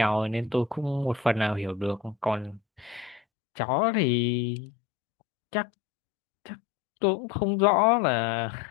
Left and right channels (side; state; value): right; drops out; at 3.2 s